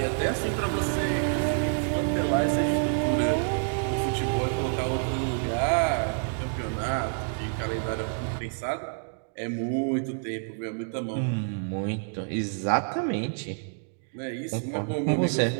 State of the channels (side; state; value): left; silent; digital silence